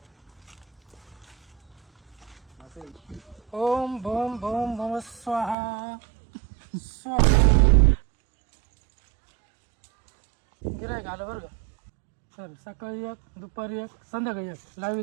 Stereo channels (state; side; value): drops out; left; at 5.6 s